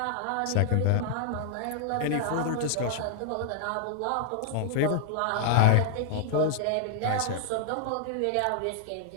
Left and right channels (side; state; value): both; different; correlation -0.01